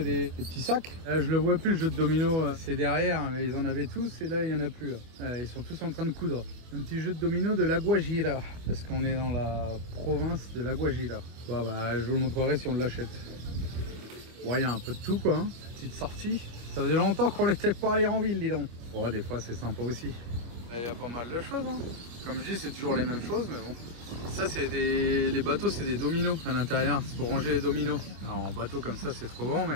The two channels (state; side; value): late; left; 25 ms